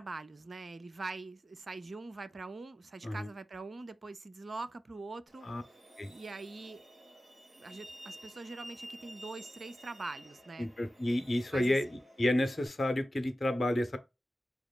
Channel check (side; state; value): both; normal; correlation 0.94